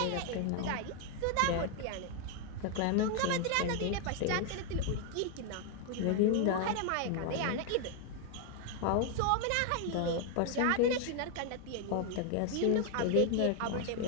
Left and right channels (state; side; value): different; both; correlation 0.01